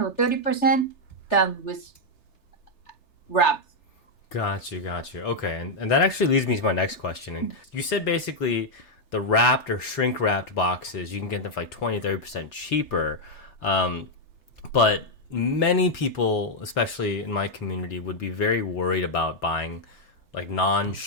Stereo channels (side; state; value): right; late; 3.3 ms